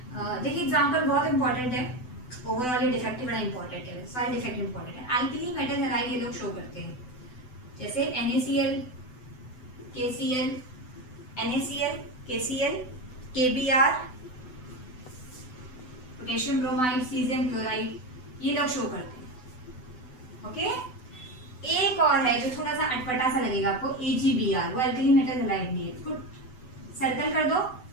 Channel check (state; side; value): late; right; 7.9 ms